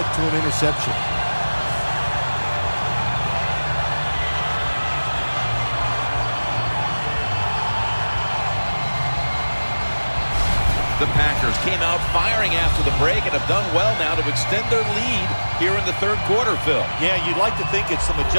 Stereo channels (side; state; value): both; inverted; correlation -1.00